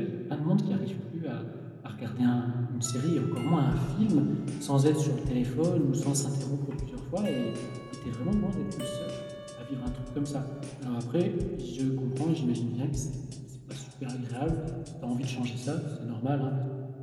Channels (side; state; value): both; identical; correlation 1.00